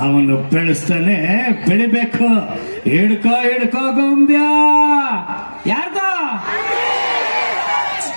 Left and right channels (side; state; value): both; inverted; correlation -1.00